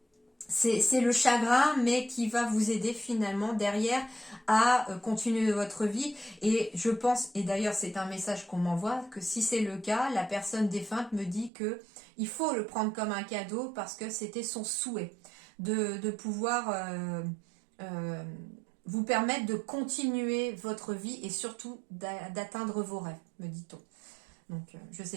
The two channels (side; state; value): left; drops out; at 11.5 s